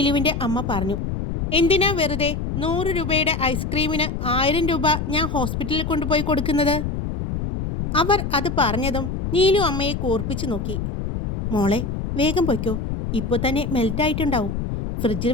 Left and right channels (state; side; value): noise; left; rumble, 3 dB below the sound